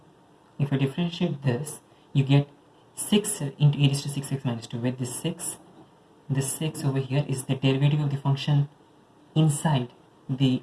you get 6 into e raised to 6x minus 2, where this 6 over here is the derivative of the function inside the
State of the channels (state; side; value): identical; both; correlation 1.00